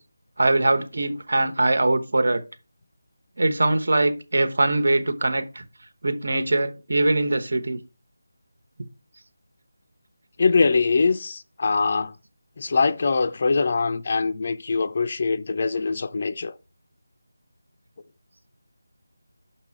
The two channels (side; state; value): both; inverted; correlation -0.93